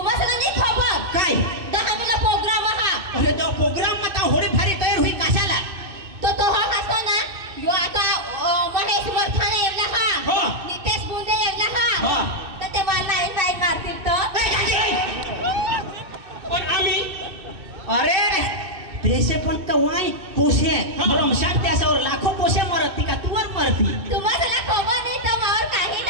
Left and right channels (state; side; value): late; left; 2.6 ms